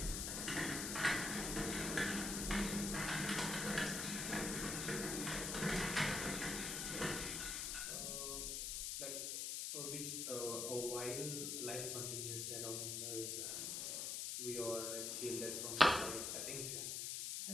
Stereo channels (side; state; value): left; noise; hiss, 1 dB below the sound